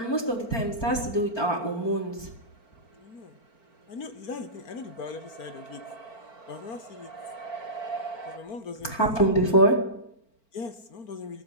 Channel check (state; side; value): late; right; 4.4 ms